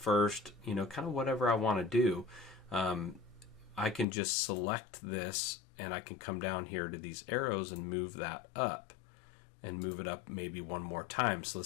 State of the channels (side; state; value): right; drops out; at 4.0 s